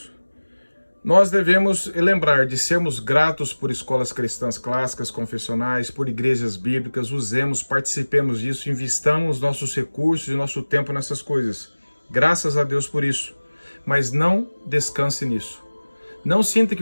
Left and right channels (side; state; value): both; inverted; correlation -1.00